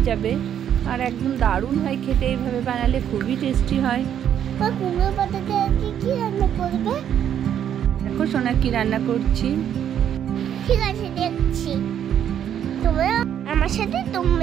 যাবে আর একদম দারুণ হয় খেতে। এইভাবে বানালে খুবই টেস্টি হয়। কুমড়ো পাতাতে কি রান্না করবে? দেখো সোনা কি রান্না করছি। ঠিক আছে, দেখছি। তোমরা আমার সাথে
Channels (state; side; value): quieter; left; 9.6 dB